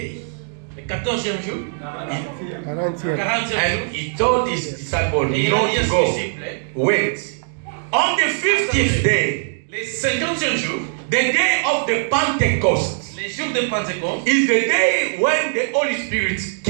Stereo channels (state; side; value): silent; left; digital silence